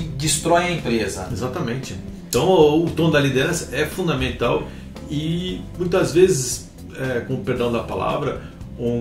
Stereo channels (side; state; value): both; identical; correlation 1.00